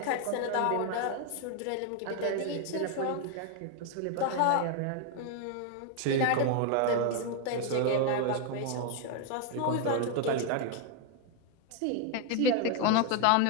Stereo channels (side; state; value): both; different; correlation 0.00